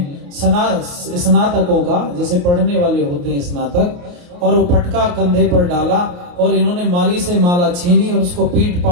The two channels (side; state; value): left; late; 28 ms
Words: स्नातकों का, जैसे पढ़ने वाले होते हैं स्नातक, और वो पटका कंधे पर डाला, और इन्होंने माली से माला छीनी और उसको पीट